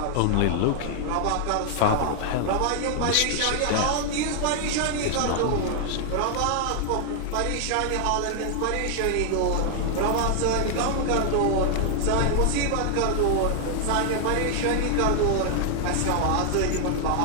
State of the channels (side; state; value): both; different; correlation 0.00